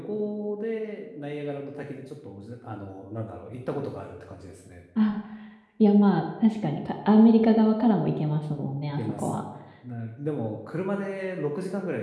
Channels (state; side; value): identical; both; correlation 1.00